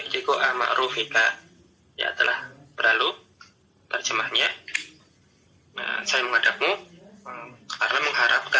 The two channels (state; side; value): identical; both; correlation 1.00